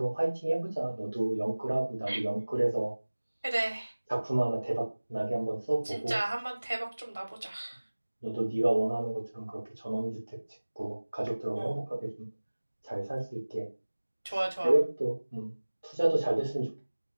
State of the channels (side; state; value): both; inverted; correlation -1.00